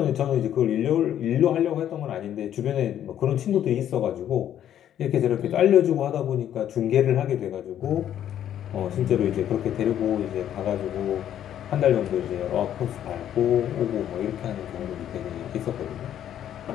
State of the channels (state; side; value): quieter; right; 10.6 dB